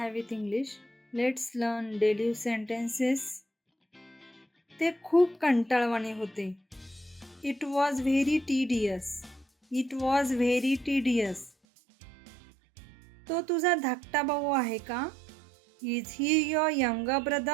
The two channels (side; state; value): left; drops out; at 11.5 s